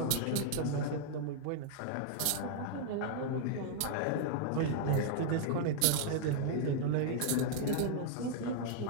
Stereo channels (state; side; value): different; both; correlation -0.01